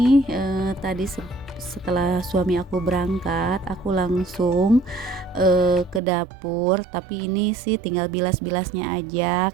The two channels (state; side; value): drops out; left; at 6.0 s